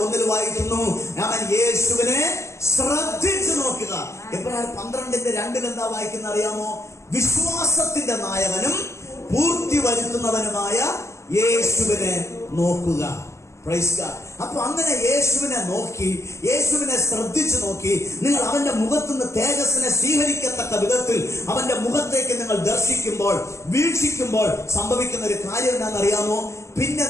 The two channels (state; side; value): late; right; 0.14 ms